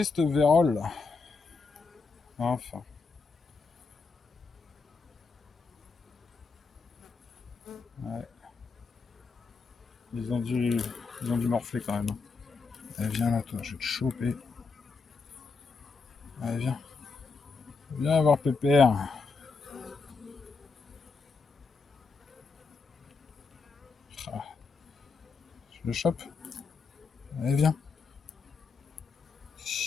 cette vérole là. Enfin. Ouais. Ils ont dû morfler quand même. Allez, viens là, toi, je vais te choper. Allez, viens. Viens voir Pépère. Ah, je le chope. Allez, viens.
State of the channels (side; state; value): right; quieter; 4.6 dB